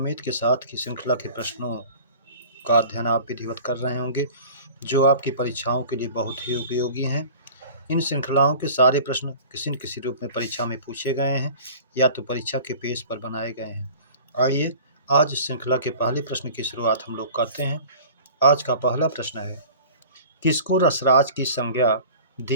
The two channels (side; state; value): both; inverted; correlation -0.43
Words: के साथ कि श्रृंखला के प्रश्नों का अध्ययन आप विधिवत कर रहे होंगे, जो आपकी परीक्षाओं के लिए बहुत ही उपयोगी हैं। इन श्रृंखलाओं के सारे प्रश्न किसी न किसी रूप में परीक्षा में पूछे गए हैं या तो परीक्षा के पेज पर बनाए गए हैं। आइए आज इस श्रृंखला के पहले प्रश्न की शुरुआत हम लोग करते हैं। आज का पहला प्रश्न है, किसको रसराज की संज्ञा